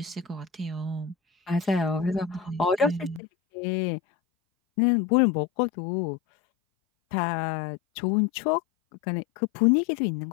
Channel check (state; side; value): drops out; right; at 3.2 s